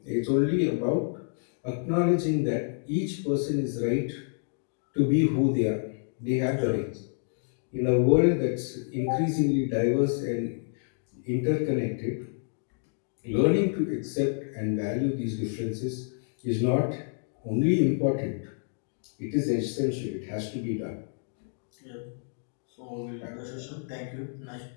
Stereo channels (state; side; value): silent; right; digital silence